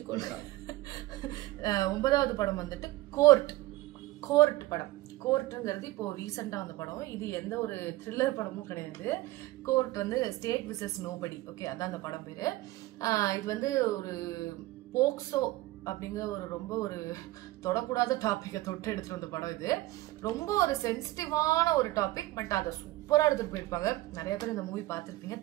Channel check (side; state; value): left; quieter; 17.9 dB